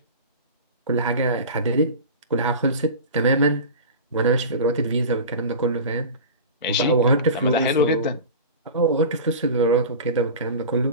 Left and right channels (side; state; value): both; inverted; correlation -0.32